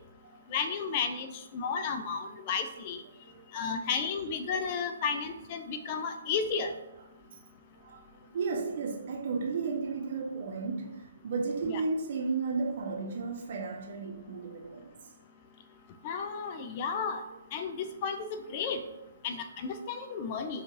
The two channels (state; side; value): inverted; both; correlation -0.46